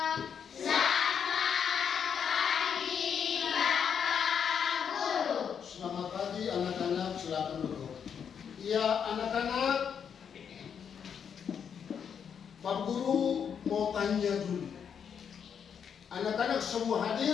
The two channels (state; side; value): quieter; right; 7.5 dB